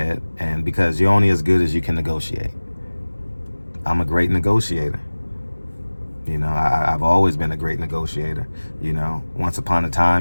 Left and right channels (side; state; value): both; inverted; correlation -1.00